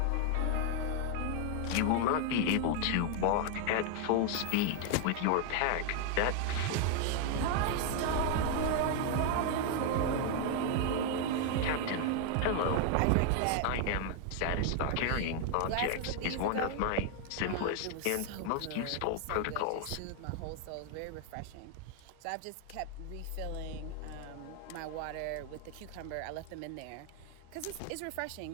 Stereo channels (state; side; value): different; both; correlation 0.00